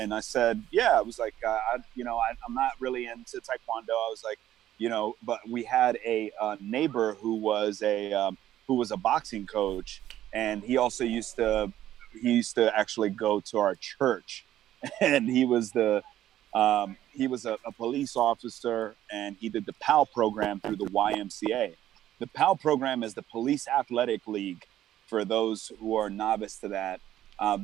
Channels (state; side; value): quieter; left; 12.5 dB